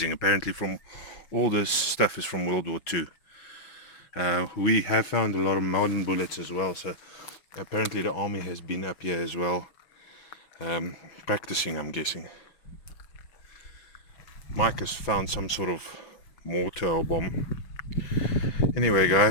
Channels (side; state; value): right; late; 5.9 ms